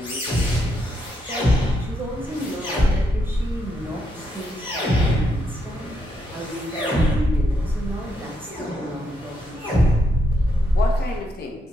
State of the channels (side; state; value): both; normal; correlation 0.79